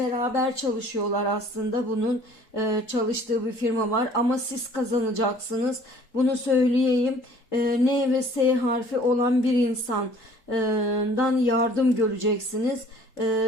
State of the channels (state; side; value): late; right; 3.8 ms